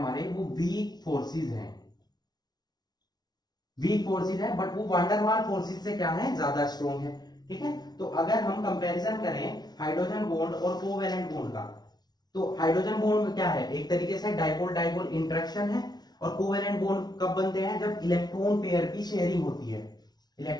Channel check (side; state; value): right; late; 0.19 ms